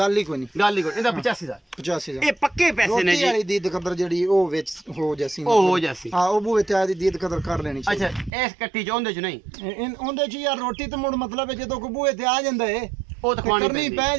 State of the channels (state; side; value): drops out; left; at 8.3 s